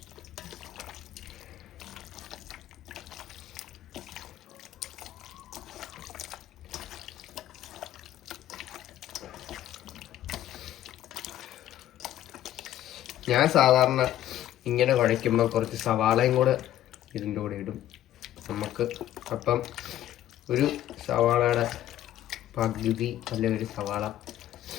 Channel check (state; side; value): quieter; right; 12.6 dB